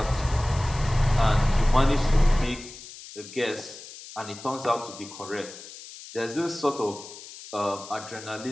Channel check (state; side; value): noise; left; hiss, 15 dB below the sound